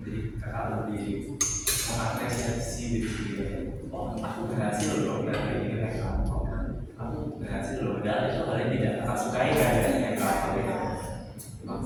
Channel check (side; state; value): both; identical; correlation 1.00